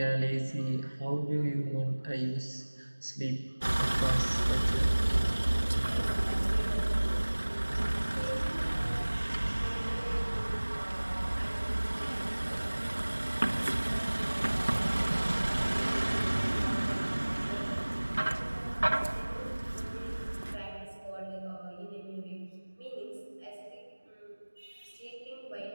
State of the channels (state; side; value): inverted; both; correlation -1.00